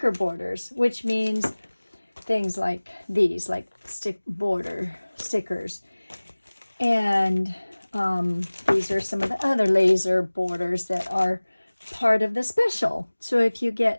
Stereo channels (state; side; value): inverted; both; correlation -1.00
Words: borders, which means things like these, like border stickers. And these are some of the other laser borders that are part of the special. So if you